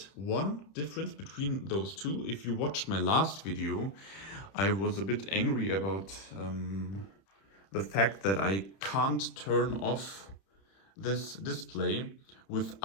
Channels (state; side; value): late; right; 31 ms